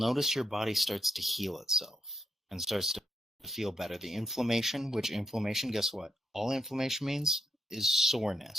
your body starts to heal itself and starts to feel better. The inflammation, which inflammation, guess what? All inflammation means is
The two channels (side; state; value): both; normal; correlation 0.77